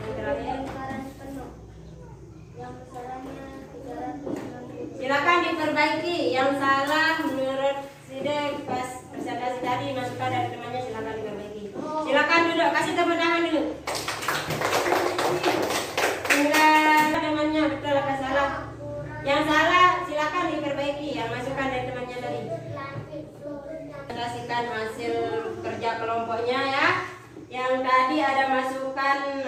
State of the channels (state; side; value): identical; both; correlation 1.00